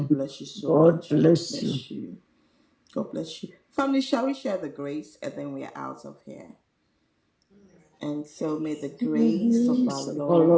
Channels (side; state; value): both; identical; correlation 1.00